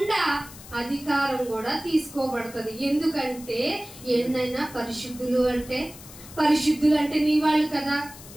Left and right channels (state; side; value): noise; left; hiss, 17 dB below the sound